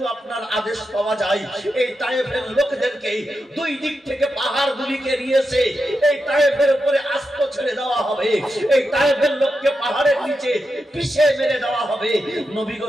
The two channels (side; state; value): both; normal; correlation 0.88